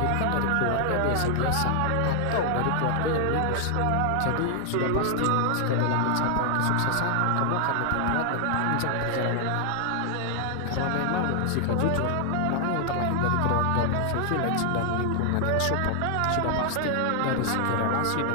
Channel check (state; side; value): different; both; correlation 0.00